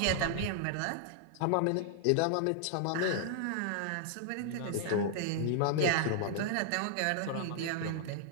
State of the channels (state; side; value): different; both; correlation -0.01